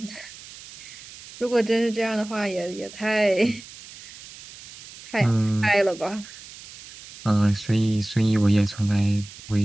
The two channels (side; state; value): right; noise; hiss, 17 dB below the sound